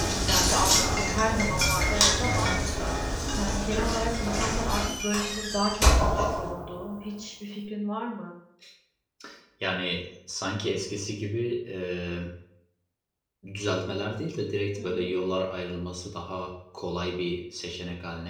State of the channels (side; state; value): both; identical; correlation 1.00